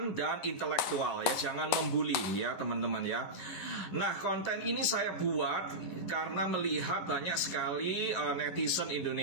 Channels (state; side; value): late; right; 11 ms